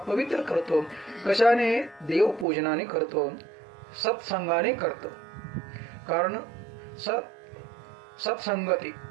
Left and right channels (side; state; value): left; drops out; at 2.5 s